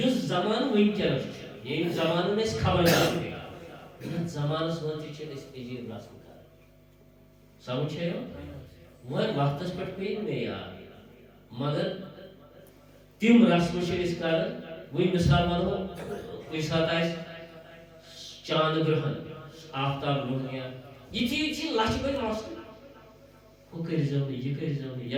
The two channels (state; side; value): identical; both; correlation 1.00